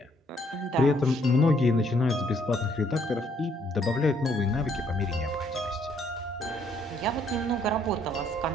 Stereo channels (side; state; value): both; normal; correlation 0.68